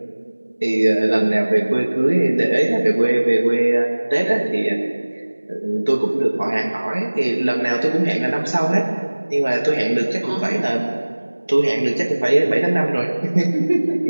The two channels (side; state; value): both; inverted; correlation -1.00